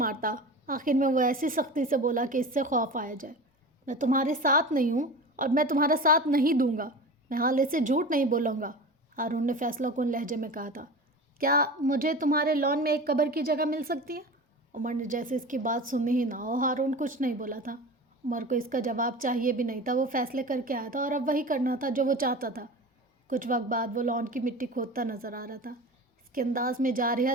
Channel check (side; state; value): both; normal; correlation 0.33